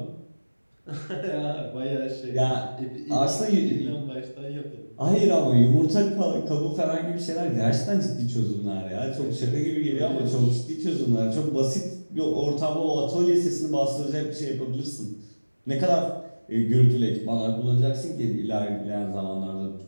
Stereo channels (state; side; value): inverted; both; correlation -1.00